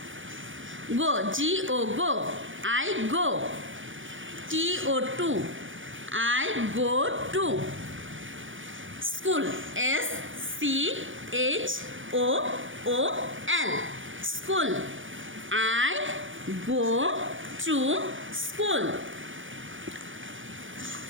go, GO go, I go. TO2 I go to. School SCHOOL school. I go to school.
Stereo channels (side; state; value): left; late; 0.57 ms